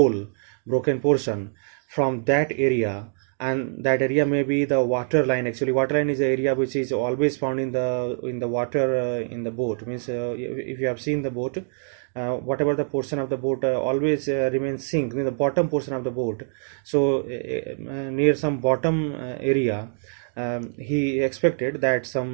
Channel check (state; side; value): silent; left; digital silence